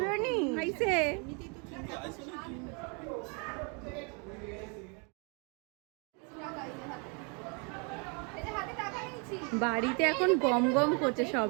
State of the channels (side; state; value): left; quieter; 34.6 dB